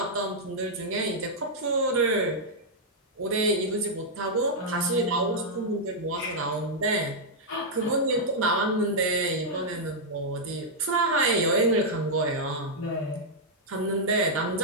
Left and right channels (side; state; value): both; normal; correlation -0.06